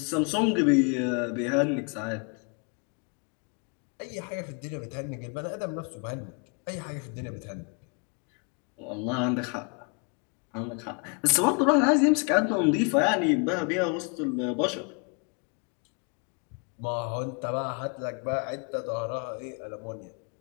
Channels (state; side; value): quieter; right; 35.5 dB